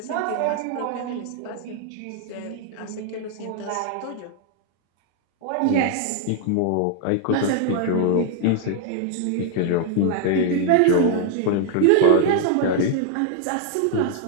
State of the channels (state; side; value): different; both; correlation 0.00